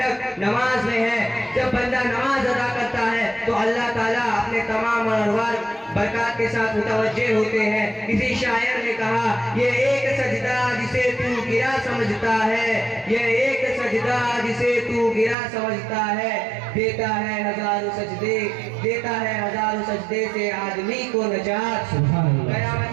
نماز میں ہے. جب بندہ نماز ادا کرتا ہے تو اللہ تعالیٰ اپنے تمام انوار برکات کے ساتھ متوجہ ہوتے ہیں. کسی شاعر نے کہا، یہ ایک سجدہ جسے تو گرا سمجھتا ہے، یہ ایک سجدہ جسے تو گرا سمجھتا ہے، دیتا ہے ہزاروں سجدے، دیتا ہے ہزاروں سجدے سے آدمی کو نجات.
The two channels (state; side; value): drops out; left; at 15.4 s